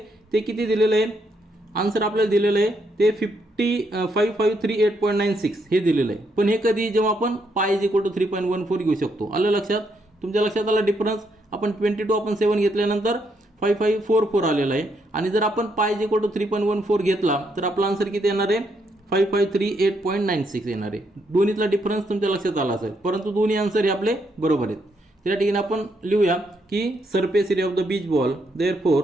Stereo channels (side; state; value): both; normal; correlation 0.76